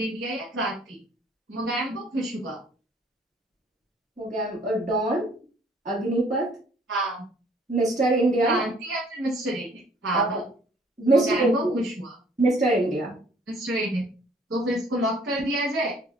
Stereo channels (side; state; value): both; normal; correlation 0.60